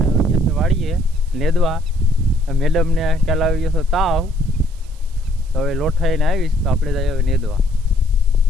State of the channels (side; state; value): right; noise; hiss, 28 dB below the sound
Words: આવી ગયા છે વાડીએ નેદવા. મેડમને ખ્યાલ આવી ગયો છે તાવ, તો હવે લોઠાઈને આવીશ તો આપણે જઈએ હવે નેદવા.